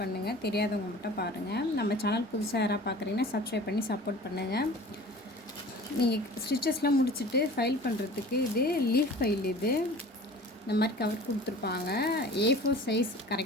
பண்ணுங்கள், தெரியாதவங்க மட்டும் பாருங்கள். நம்ம சேனல் புதுசாக யாராவது பார்க்குறீங்கன்னா சப்ஸ்கிரைப் பண்ணி சப்போர்ட் பண்ணுங்கள். நீங்கள் ஸ்டிச்சஸ்லாம் முடிச்சுட்டு ஃபைல் பண்ணுறதுக்கு இது லீஃப் ஃபைல். இது இந்த மாதிரி கவர் கொடுத்துருப்பாங்க. A4 சைஸ்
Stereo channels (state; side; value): normal; both; correlation 0.42